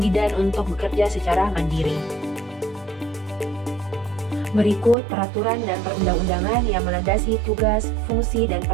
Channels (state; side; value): drops out; left; at 5.0 s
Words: untuk bekerja secara mandiri. Berikut peraturan dan perundang-undangan yang melandasi tugas, fungsi, dan